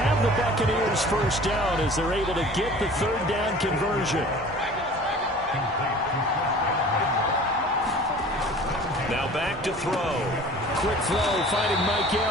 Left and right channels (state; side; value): normal; both; correlation 0.44